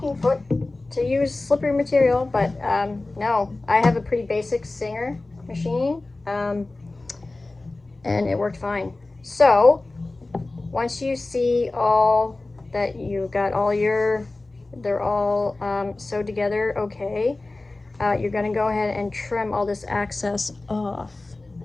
foot to use slippery material, but no, I have a pretty basic Singer machine, and it worked fine. So once you see all that you got all your, they're all sewed together okay, you're gonna go ahead and trim all this excess off.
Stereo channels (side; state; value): right; quieter; 3.1 dB